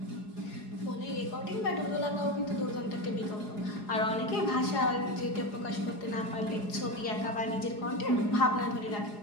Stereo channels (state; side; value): late; right; 4.8 ms